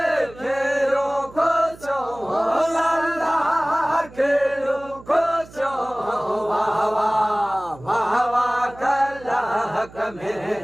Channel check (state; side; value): noise; right; hum, 20 dB below the sound